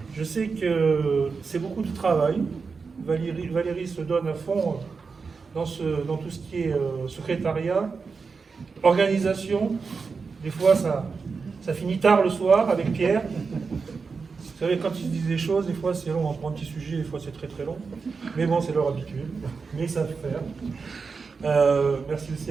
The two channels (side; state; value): left; quieter; 4.9 dB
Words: Je sais que c'est beaucoup de travail. Valérie se donne à fond dans tout ce qui est secrétariat, organisation. Des fois, ça finit tard le soir avec Pierre. Vous savez, quand ils se disent des choses, des fois c'est long, on prend un petit sujet, des fois c'est très très long. Mais bon, c'est leur habitude, mais ils savent faire. Merci aussi